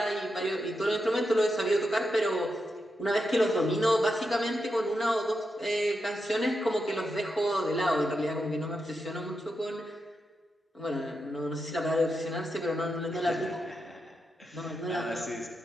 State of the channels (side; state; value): both; normal; correlation 0.86